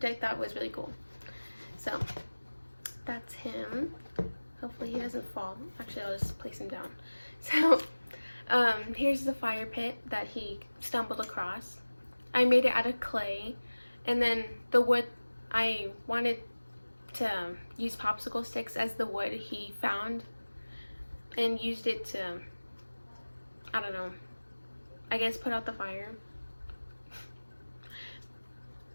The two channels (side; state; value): both; inverted; correlation -1.00